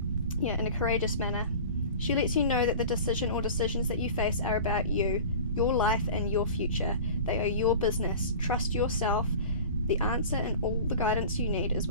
Yeah, in a courageous manner. She lets you know that the decision or decisions that you face are about you, your life and your future. They are your business. Trust yourself. The answer and all the guidance you need is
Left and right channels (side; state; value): both; inverted; correlation -0.37